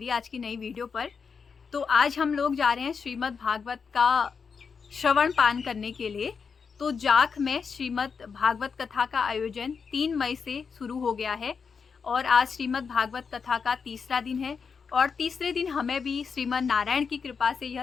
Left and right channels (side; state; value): right; quieter; 5.8 dB